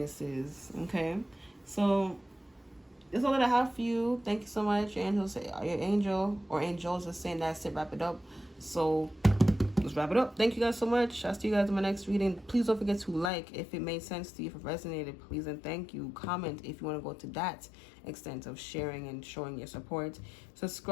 is. Okay, so that's all that I have for you. Thank you so much. Your angel or angels are saying that's it. Wrap it up. So let's wrap it up. Thank you guys so much. I'll see you guys in my next reading. Please don't forget to like if it made sense to you, if it resonated, please and thank you. Comment if you want to go to that extent of sharing and showing your support.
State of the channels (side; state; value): right; drops out; at 13.3 s